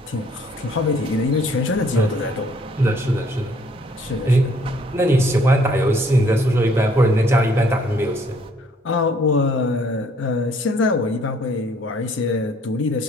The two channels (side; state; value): both; normal; correlation 0.62